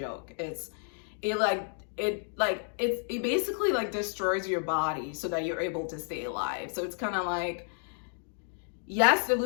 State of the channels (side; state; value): right; silent; 57 dB below the other